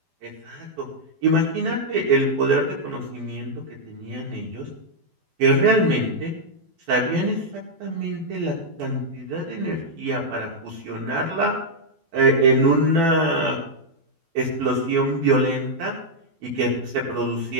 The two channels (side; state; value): left; late; 12 ms